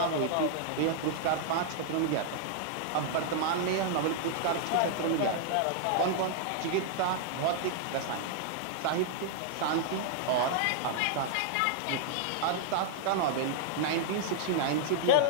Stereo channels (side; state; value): both; different; correlation -0.01